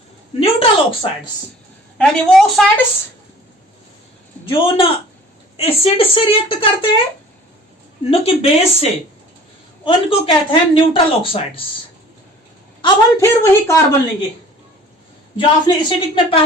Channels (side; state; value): both; normal; correlation 0.48